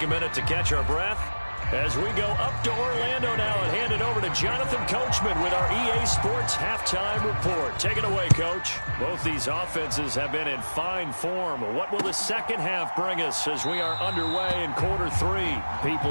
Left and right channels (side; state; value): both; inverted; correlation -1.00